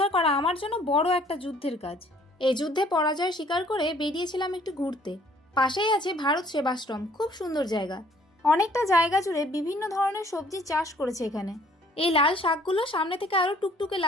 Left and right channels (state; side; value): normal; both; correlation 0.59